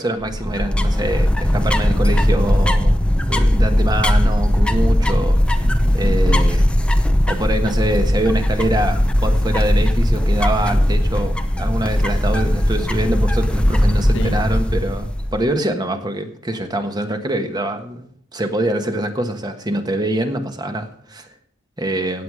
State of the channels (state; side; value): normal; both; correlation 0.89